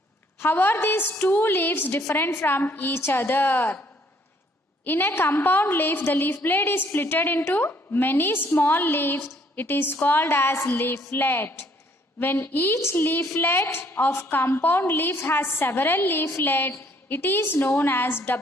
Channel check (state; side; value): normal; both; correlation 0.64